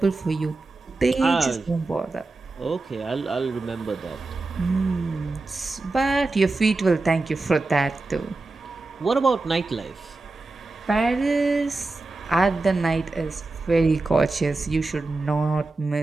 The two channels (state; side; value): quieter; left; 3.3 dB